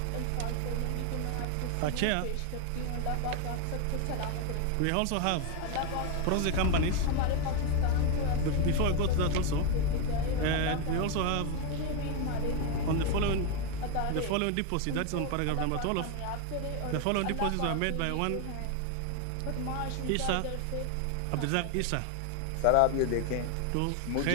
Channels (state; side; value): different; both; correlation 0.01